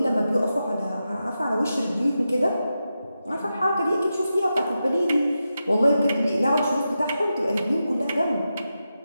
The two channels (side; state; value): both; inverted; correlation -0.90